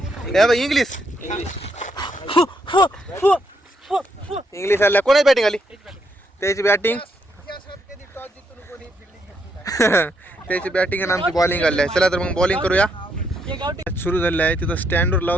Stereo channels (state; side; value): normal; both; correlation 0.76